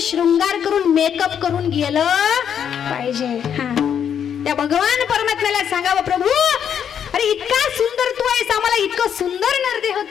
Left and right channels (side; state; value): right; quieter; 8.4 dB